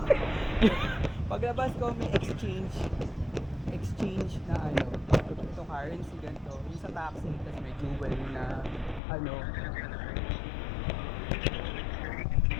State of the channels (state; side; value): drops out; right; at 9.0 s